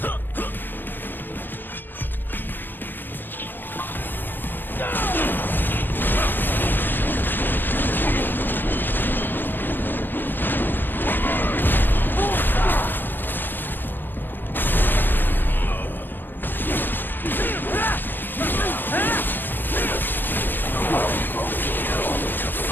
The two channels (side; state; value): right; late; 0.093 ms